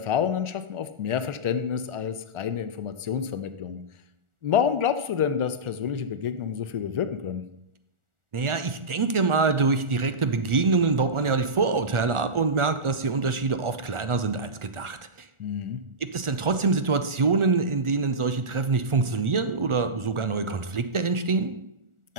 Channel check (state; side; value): late; left; 1.4 ms